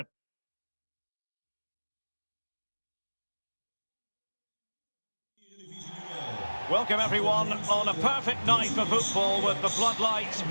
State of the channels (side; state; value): both; inverted; correlation -1.00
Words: Welcome everyone on a perfect night for football with the floodlights